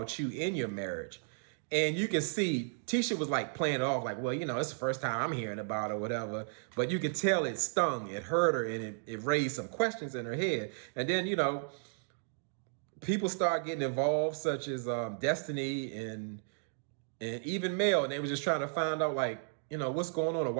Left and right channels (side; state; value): left; silent; digital silence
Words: you in your marriage? And you can see Tisha was like playing it off like, well, it's the first time I'm hearing about it or whatever. But you could tell it stung, it hurt her, and it raised some questions in her head. And then, people start getting involved, such as Destiny and even Mel, and they were just trying to find out like, what's going on or